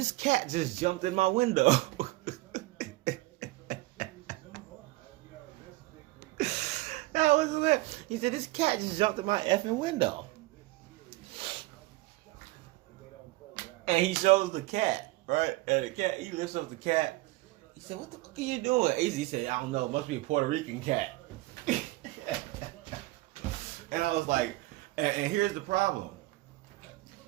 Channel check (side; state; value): left; quieter; 20.2 dB